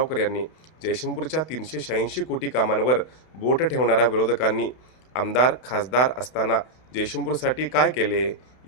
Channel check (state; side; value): late; right; 32 ms